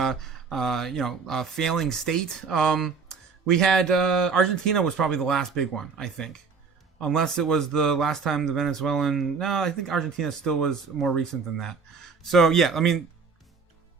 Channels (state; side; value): quieter; left; 5.2 dB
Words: failing state. We had Argentina was probably the last big one, I think. Unless it was the last time the Venezuelan... No, I think Argentina still was more recent than that. So, yeah, I mean,